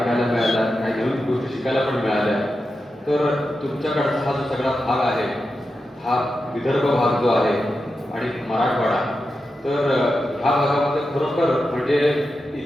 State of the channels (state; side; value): normal; both; correlation 0.90